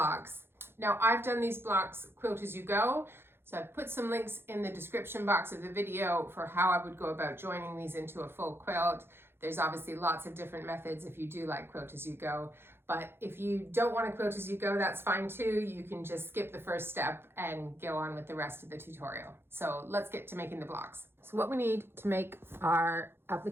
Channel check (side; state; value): left; late; 0.11 ms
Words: Now I've done these blocks Quilt-As-You-Go. So I've put some links in the description box of the video for how I would go about joining these into a full quilt. There's obviously lots of different methods if you do like Quilt-As-You-Go, but if you don't want to Quilt-As-You-Go, that's fine too. You can just skip the first step and go on with the rest of the tutorial. So let's get to making the blocks. So what we need to make our